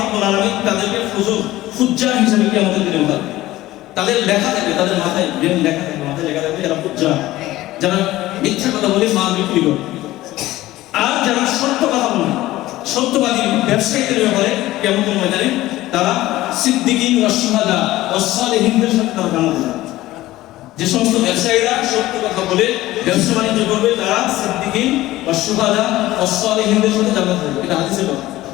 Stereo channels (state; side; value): quieter; right; 16.6 dB